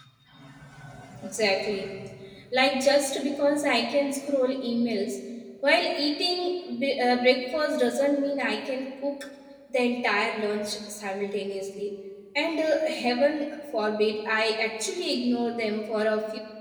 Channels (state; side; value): identical; both; correlation 1.00